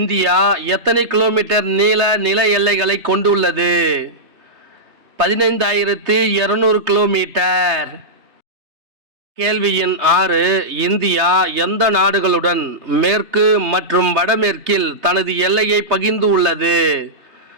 எத்தனை கிலோமீட்டர் நீள நில எல்லைகளை கொண்டுள்ளது? 15,200 கிலோமீட்டர். கேள்வி எண் 6. இந்தியா எந்த நாடுகளுடன் மேற்கு மற்றும் வடமேற்கில் தனது எல்லையை பகிர்ந்து உள்ளது?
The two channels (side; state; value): left; late; 3.2 ms